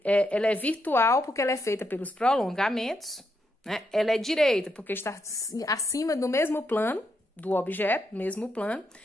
é virtual, porque ela é feita pelos prolongamentos, né? Ela é direita, porque está acima do mesmo plano do objeto, mesmo plano.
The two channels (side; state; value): both; normal; correlation 0.81